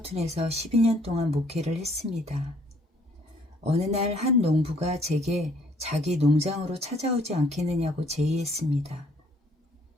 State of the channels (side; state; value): both; normal; correlation 0.63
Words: 12년 동안 목회를 했습니다. 어느 날 한 농부가 제게 자기 농장으로 찾아오지 않겠느냐고 제의했습니다.